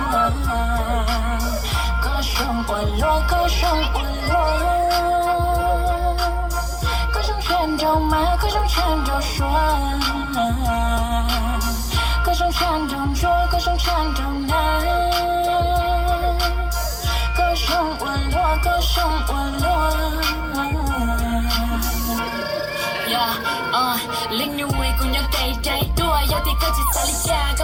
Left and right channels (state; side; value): identical; both; correlation 1.00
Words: Linh như người của nhau tay trái đua giao thì có chỉ xa lý cha